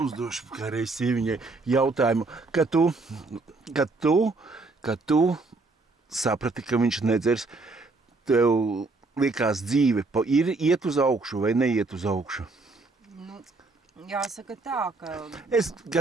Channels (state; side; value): quieter; left; 3.5 dB